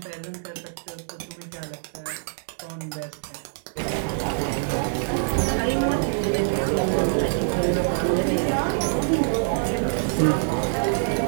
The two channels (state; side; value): silent; left; digital silence